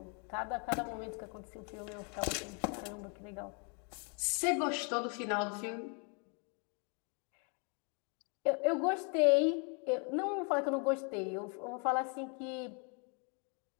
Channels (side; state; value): right; quieter; 37.1 dB